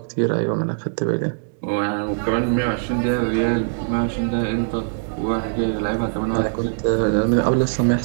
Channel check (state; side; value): silent; left; digital silence